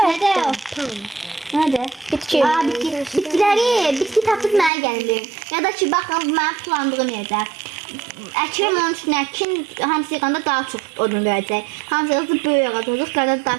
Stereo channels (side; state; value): left; drops out; at 4.7 s